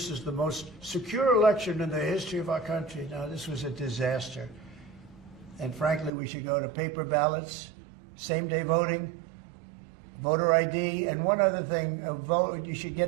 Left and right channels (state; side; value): drops out; left; at 6.1 s